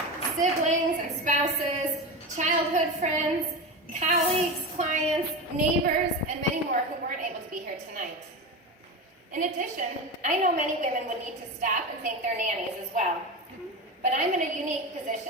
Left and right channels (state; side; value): normal; both; correlation 0.22